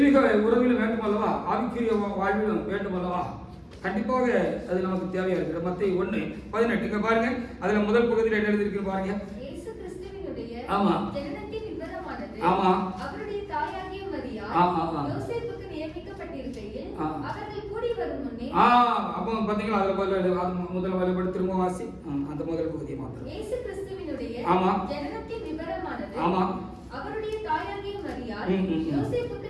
உறவிலும் வேண்டும் அல்லவா, ஆவிக்குரிய வாழ்விலும் வேண்டும் அல்லவா? கண்டிப்பாக அது நமக்கு தேவையா இருக்கிறது. மத்தேயு 1:18 இங்க பாருங்க. அதுல முதல் பகுதியில் என்ன எழுதிருக்கு பாருங்க. இயேசு கிறிஸ்துவினுடைய ஆமா ஜனனத்தின் விவரமானது ஆமா அவருடைய தாயாகிய மரியாள் யோசேப்புக்கு நியமிக்கப்பட்டிருக்கையில் அவர்கள் கூடி வரும் முன்னே அப்போ பாத்தீங்களா, அதுல முதல் வரைபடம் திரும்ப வாசி. அந்த முதல் பகுதியை மாத்திரம். இயேசு கிறிஸ்துவினுடைய ஜனனத்தின் விவரமானது ஆமா அவருடைய தாயாகிய மரியாள் யோசேப்புக்கு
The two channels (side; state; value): both; identical; correlation 1.00